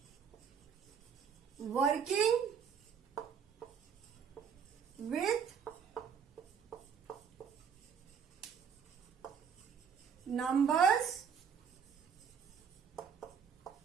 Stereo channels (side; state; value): left; quieter; 7.1 dB